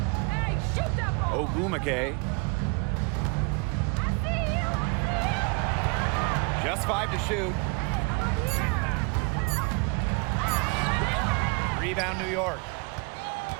Ogumake. Just 5 to shoot. Rebound New York.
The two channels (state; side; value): quieter; left; 32.0 dB